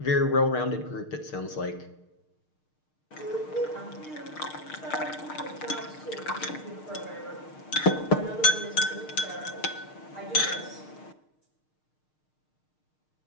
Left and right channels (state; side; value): late; right; 6.5 ms